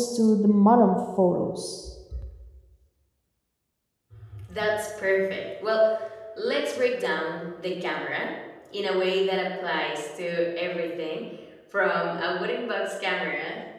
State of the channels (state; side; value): identical; both; correlation 1.00